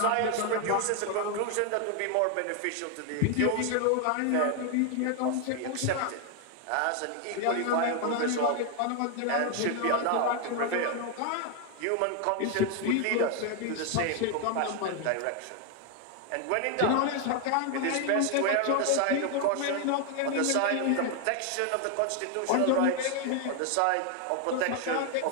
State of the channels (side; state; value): both; different; correlation 0.01